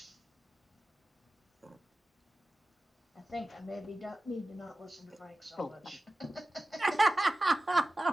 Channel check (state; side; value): normal; both; correlation 0.94